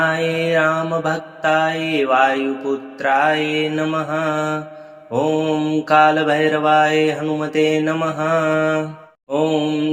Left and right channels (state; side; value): identical; both; correlation 1.00